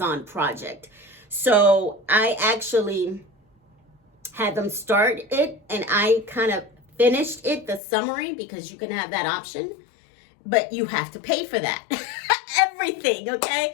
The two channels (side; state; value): right; drops out; at 7.8 s